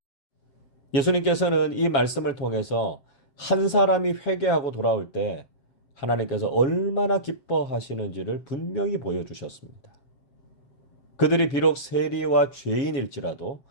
예수님께서는 이 말씀을 통해서 한 사람이 회개하고 돌아올 때 하나님께서 얼마나 기뻐하시는지를 분명히 보여주셨습니다. 그들이 비록 세리와 죄인일지라도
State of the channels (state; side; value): late; right; 7.5 ms